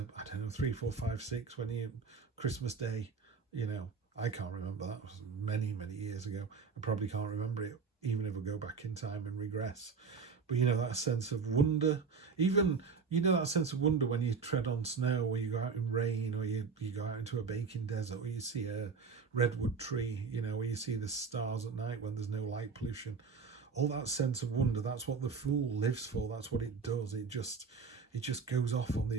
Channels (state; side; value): quieter; left; 5.3 dB